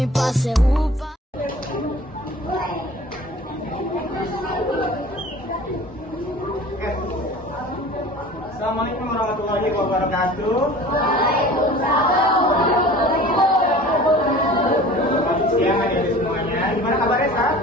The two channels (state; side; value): normal; both; correlation 0.43